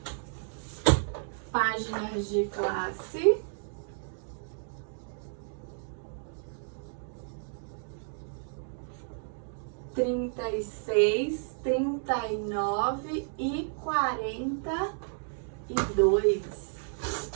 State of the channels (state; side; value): silent; left; digital silence